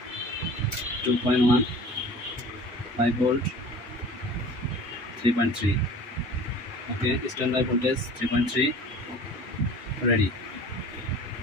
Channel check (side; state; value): both; normal; correlation 0.43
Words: 2.1 5 volt 3.3, okay, standard voltage 3.3 ready,